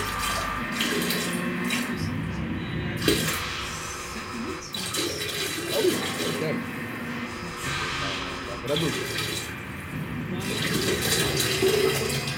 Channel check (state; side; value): identical; both; correlation 1.00